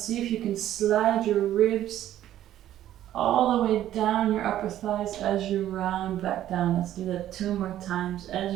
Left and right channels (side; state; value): left; quieter; 12.4 dB